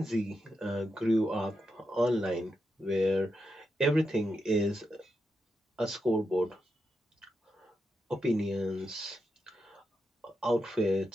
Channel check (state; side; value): normal; both; correlation 0.86